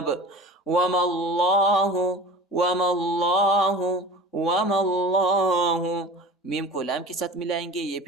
وَمَا اللَّهُ میم کو لام کے ساتھ ملائیں گے، یہ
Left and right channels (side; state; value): both; normal; correlation 0.37